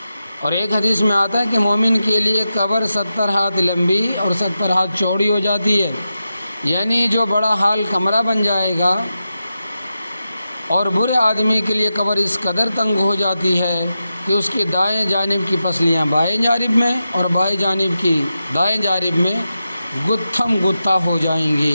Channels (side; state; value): both; inverted; correlation -0.90